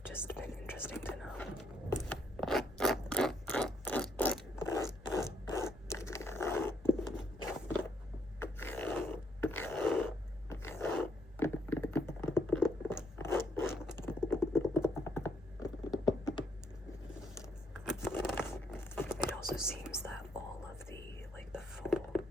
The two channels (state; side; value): normal; both; correlation 0.71